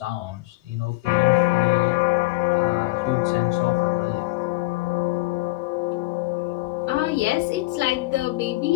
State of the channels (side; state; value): right; quieter; 21.1 dB